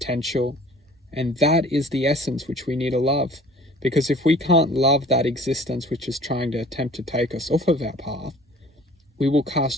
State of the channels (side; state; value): both; normal; correlation 0.49